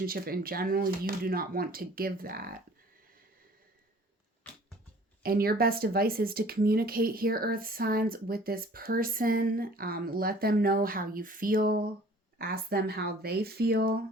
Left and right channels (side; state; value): both; normal; correlation 0.51